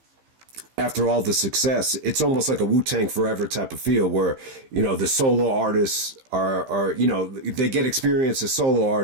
after all the success, it's almost like a Wu-Tang Forever type of feel where, the solo artists are they get experience as solo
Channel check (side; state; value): left; late; 15 ms